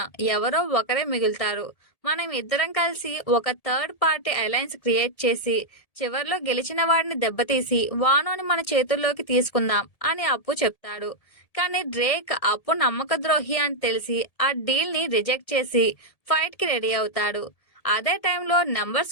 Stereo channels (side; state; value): right; late; 1.8 ms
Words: ఎవరో ఒకరే మిగులుతారు. మనం ఇద్దరం కలిసి ఒక థర్డ్ పార్టీ అలయన్స్ క్రియేట్ చేసి చివర్లో గెలిచిన వాడిని దెబ్బతీసి వానోని మన చేతుల్లోకి తీసుకుందాం అని అప్పు చెప్తాడు. కానీ డ్రేక్ అప్పు నమ్మక ద్రోహి అని తెలిసి ఆ డీల్ ని రిజెక్ట్ చేసి ఫైట్ కి రెడీ అవుతాడు. అదే టైంలో